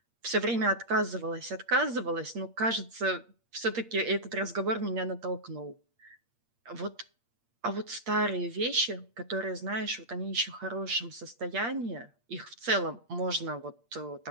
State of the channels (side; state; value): left; late; 8.6 ms